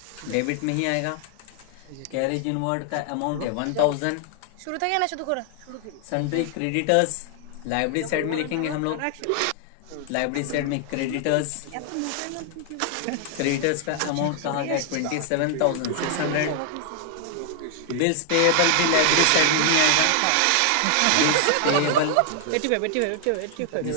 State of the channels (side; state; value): both; different; correlation 0.00